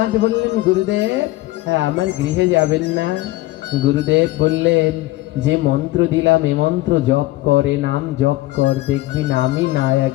বললেন গুরুদেব হ্যাঁ আমার গৃহে যাবেন না? গুরুদেব বললেন যে মন্ত্র দিলাম এ মন্ত্র জপ করে, নাম জপ কর, দেখবি নামই না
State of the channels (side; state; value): right; quieter; 17.9 dB